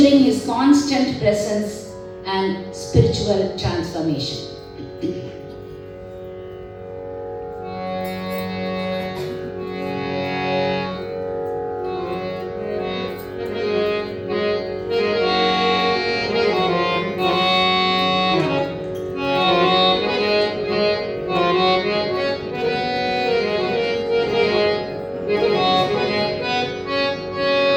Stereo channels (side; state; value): both; identical; correlation 1.00